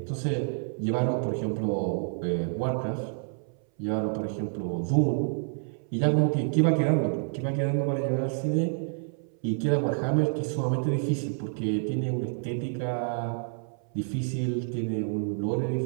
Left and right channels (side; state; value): left; silent; 59 dB below the other